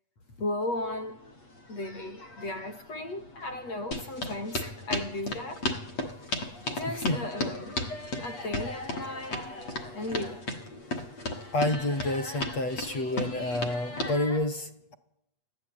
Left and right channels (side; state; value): right; late; 8.3 ms